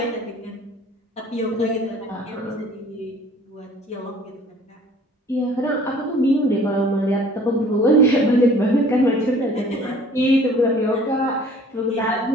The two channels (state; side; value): normal; both; correlation 0.52